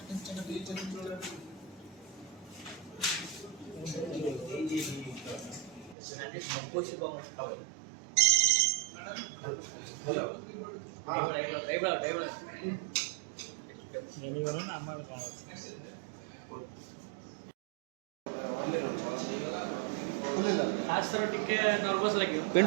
आज थोड़ा टिके नर्वस लगे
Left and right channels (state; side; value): drops out; left; at 6.0 s